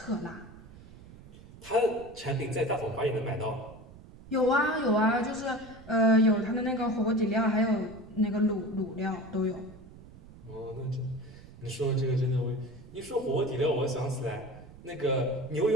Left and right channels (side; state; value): right; noise; rumble, 19 dB below the sound